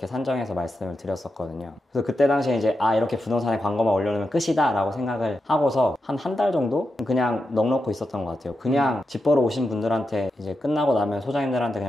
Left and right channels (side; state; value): both; normal; correlation 0.88